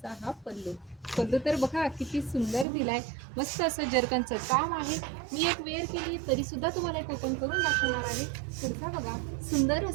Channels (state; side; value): drops out; left; at 2.7 s